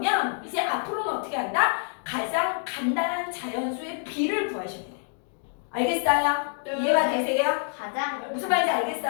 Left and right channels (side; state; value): right; silent; 58 dB below the other